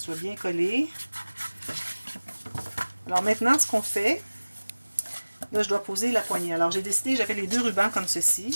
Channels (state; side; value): inverted; both; correlation -1.00